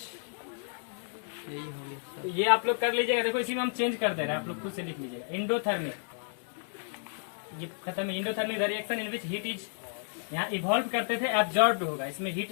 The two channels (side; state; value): right; silent; digital silence